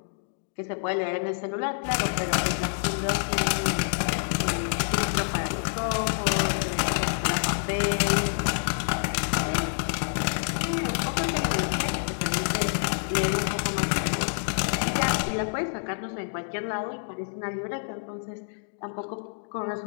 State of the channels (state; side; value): silent; right; digital silence